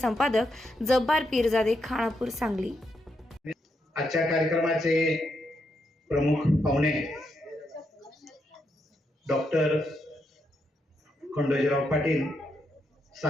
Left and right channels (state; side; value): normal; both; correlation 0.81